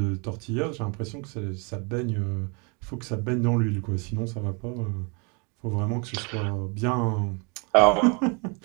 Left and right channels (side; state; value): left; quieter; 33.0 dB